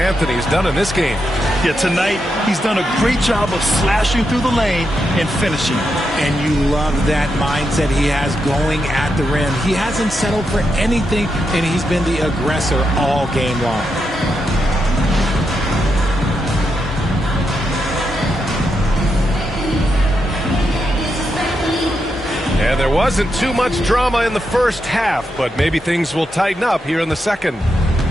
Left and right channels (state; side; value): normal; both; correlation 0.84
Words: has done in this game. Yeah, tonight he's done a great job of slashing through the lane and finishing. And you love that mindset he has going at the rim. He hasn't settled for anything, and he's been the aggressor all game long. And there wasn't too much drama in the first half, but maybe things will tighten up here in the second.